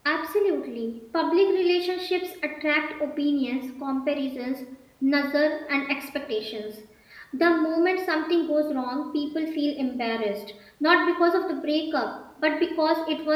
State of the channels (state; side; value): identical; both; correlation 1.00